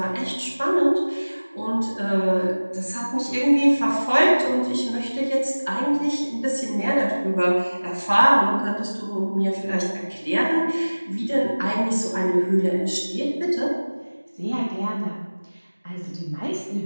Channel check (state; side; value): inverted; both; correlation -1.00